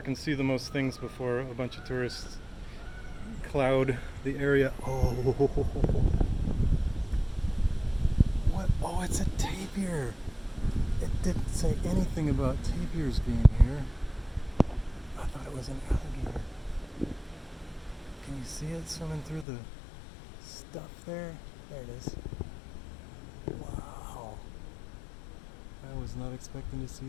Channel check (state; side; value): drops out; right; at 19.5 s